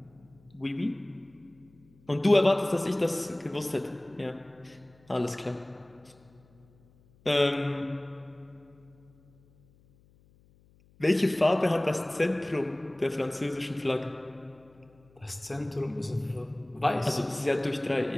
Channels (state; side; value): noise; left; hum, 30 dB below the sound